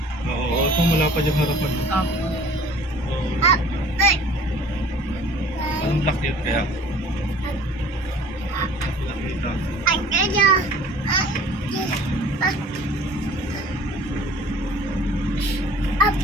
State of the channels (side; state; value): both; normal; correlation 0.48